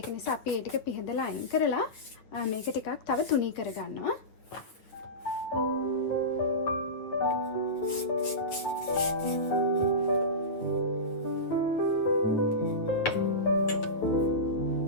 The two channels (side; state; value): right; late; 9.1 ms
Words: නිසා අපි ඒ ටික පිහදලා අයින් කරලා මේක ටිකක් තව තුනී කරගන්නවා.